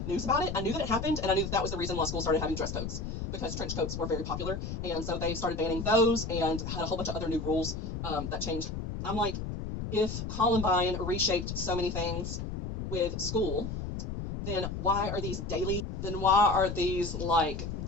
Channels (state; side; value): noise; left; rumble, 5 dB below the sound